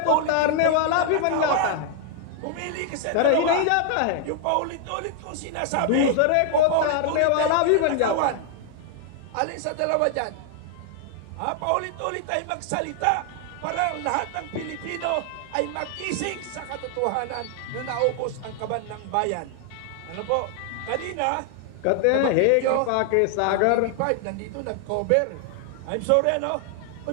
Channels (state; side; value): different; both; correlation 0.00